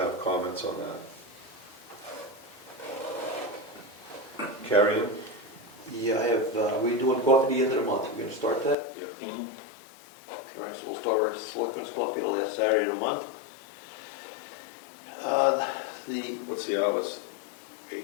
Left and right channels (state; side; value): drops out; right; at 8.8 s